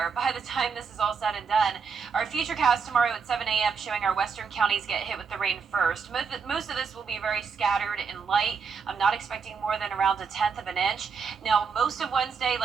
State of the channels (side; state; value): left; quieter; 5.8 dB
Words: by the time this is all said and done. Our futurecast tomorrow at 7 a.m. showing our western counties get hit with the rain first. Most of this will be very scattered and light. I'm not expecting more than around 1/10 of an inch. Now, most of Wednesday,